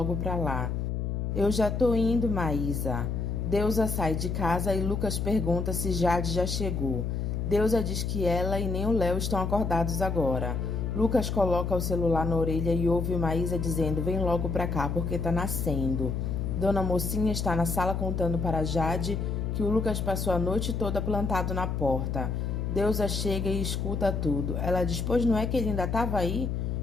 para lá. Eu já tô indo, Maísa. Deusa sai de casa e Lucas pergunta se Jade já chegou. Deusa diz que ela e nem o Léo estão acordados agora. Lucas coloca o celular na orelha e ouve Maísa dizendo: vem logo pra cá porque tá nascendo. Dona Mocinha está na sala contando para Jade que o Lucas passou a noite toda plantado na porta. Deusa chega e escuta tudo. Ela diz: pois não é que ele ainda estava aí?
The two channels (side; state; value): left; noise; hum, 1 dB below the sound